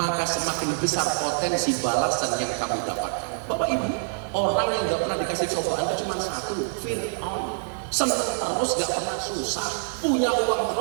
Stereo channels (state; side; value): silent; left; digital silence